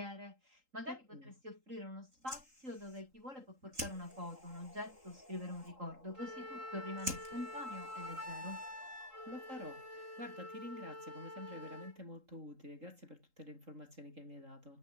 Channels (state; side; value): late; left; 3.8 ms